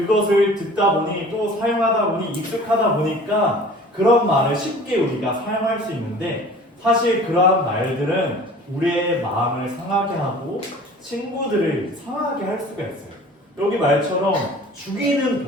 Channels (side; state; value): both; normal; correlation 0.45